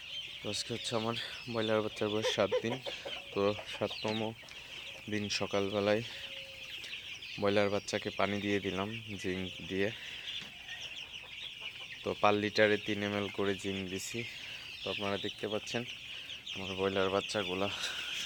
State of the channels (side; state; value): both; identical; correlation 1.00